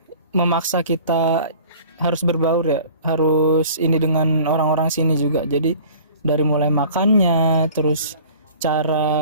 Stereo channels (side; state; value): both; inverted; correlation -0.46